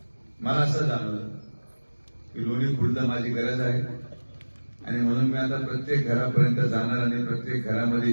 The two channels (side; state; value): both; inverted; correlation -1.00